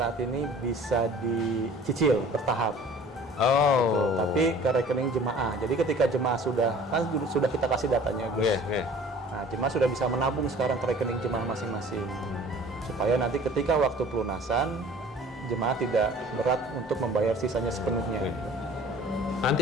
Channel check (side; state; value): both; normal; correlation 0.48